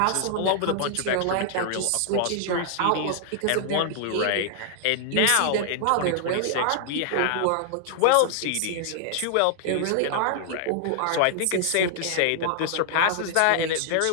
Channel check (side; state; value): both; different; correlation 0.00